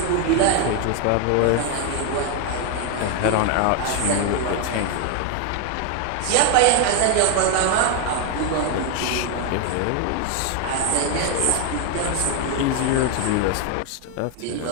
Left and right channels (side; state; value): both; different; correlation 0.01